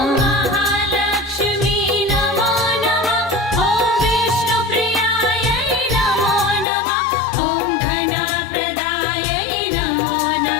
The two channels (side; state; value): right; drops out; at 6.7 s